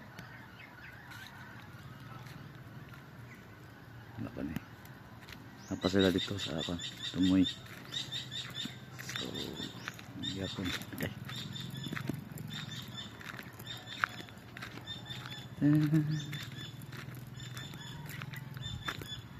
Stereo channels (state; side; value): identical; both; correlation 1.00